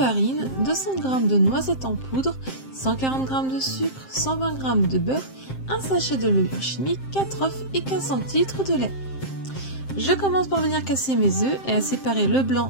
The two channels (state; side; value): late; right; 7.6 ms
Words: 200 g de noisettes en poudre, 140 g de sucre, 120 g de beurre, un sachet de levure chimique, 4 œufs et 15 centilitres de lait. Je commence par venir casser mes œufs et à séparer le